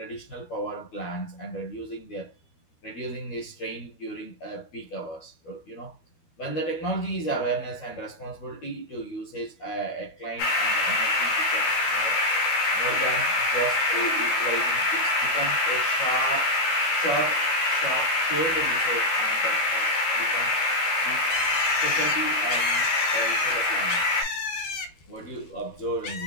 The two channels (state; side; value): late; right; 13 ms